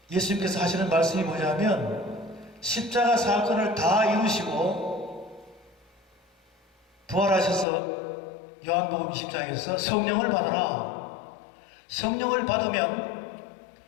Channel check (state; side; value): drops out; right; at 7.7 s